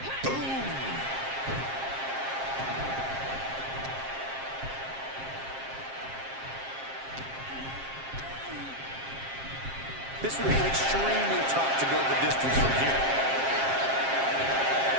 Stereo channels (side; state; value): left; late; 7.5 ms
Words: This would be extremely tough to go the distance from here.